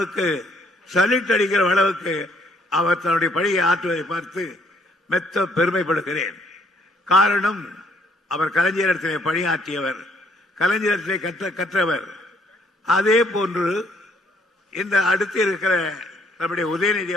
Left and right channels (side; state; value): both; normal; correlation 0.66